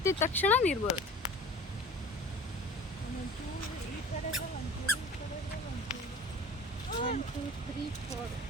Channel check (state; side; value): normal; both; correlation 0.41